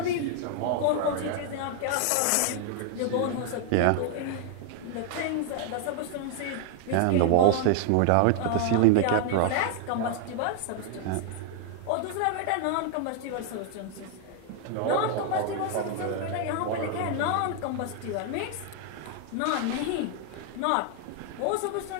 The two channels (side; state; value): both; different; correlation 0.00